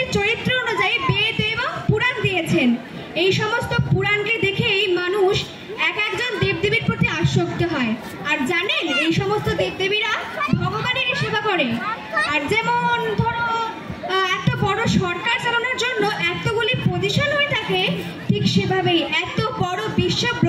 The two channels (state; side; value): identical; both; correlation 1.00